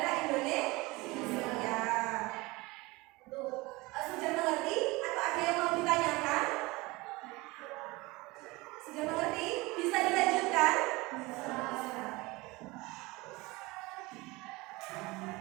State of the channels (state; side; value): quieter; left; 22.8 dB